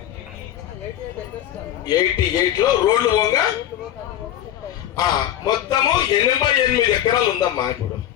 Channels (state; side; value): quieter; right; 11.8 dB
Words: 88లో రోడ్లు పోగా మొత్తము 88 ఎకరాలు ఉందమ్మా. ఇప్పుడు